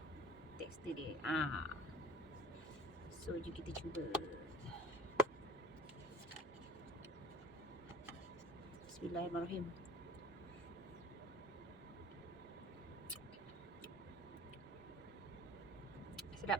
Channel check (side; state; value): both; normal; correlation 0.43